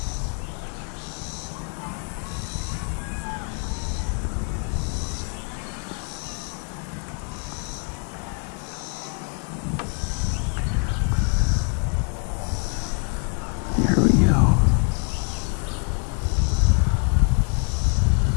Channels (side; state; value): right; quieter; 39.8 dB